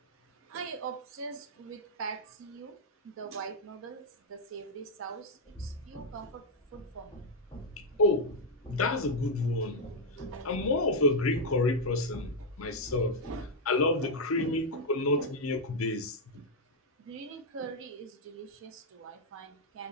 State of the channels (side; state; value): both; normal; correlation 0.00